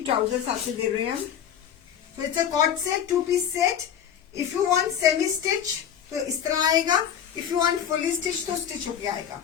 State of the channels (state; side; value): quieter; right; 9.1 dB